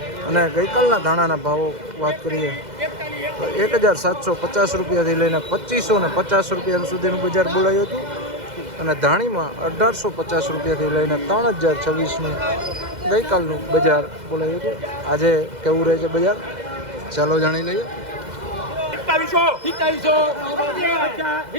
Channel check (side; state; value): left; late; 2.0 ms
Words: અને ગઈકાલના ધાણાના ભાવો વાત કરીએ તો 1750 રૂપિયાથી લઈને 2550 રૂપિયા સુધીનું બજાર બોલાયું હતું. અને ધાણીમાં 1850 રૂપિયાથી લઈને 3026નું ગઈકાલનું બજાર બોલાયું હતું. આજે કેવું રહે છે બજાર ચાલો જાણી લઈએ.